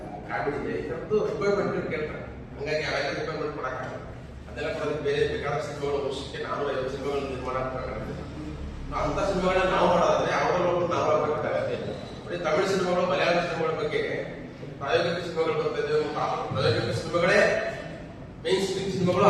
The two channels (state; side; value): identical; both; correlation 1.00